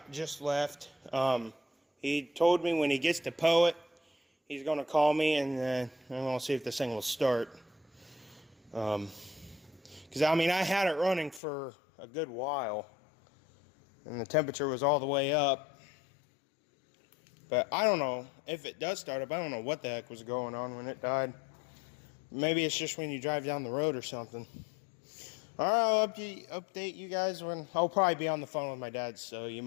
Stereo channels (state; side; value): drops out; right; at 11.4 s